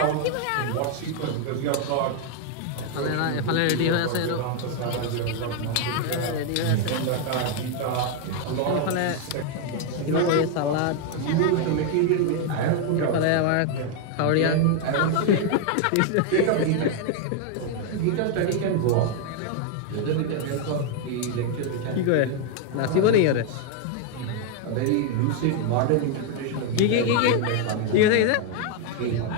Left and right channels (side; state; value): both; different; correlation 0.00